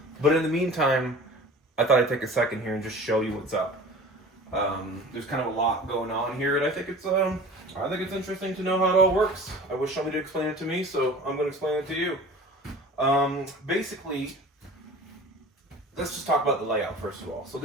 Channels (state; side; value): normal; both; correlation 0.41